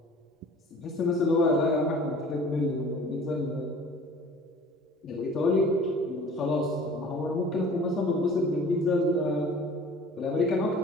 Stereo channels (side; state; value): both; normal; correlation 0.47